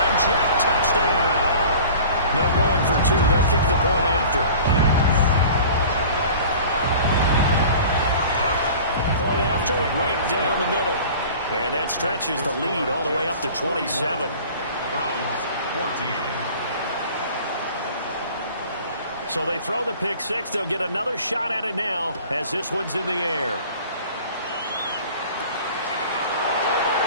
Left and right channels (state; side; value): inverted; both; correlation -0.43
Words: Jet touchdown. No going for 2. They'll kick the point after. Point after, right down the middle. And that stretches the lead all the way up to 27. Browns 14. So they throw the pick 6. They'll get another shot at it now as this one's in the air.